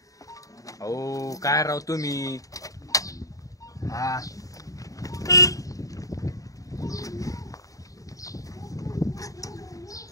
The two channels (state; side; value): late; right; 0.16 ms